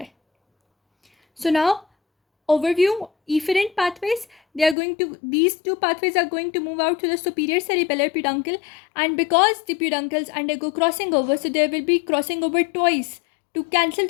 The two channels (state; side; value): drops out; right; at 4.8 s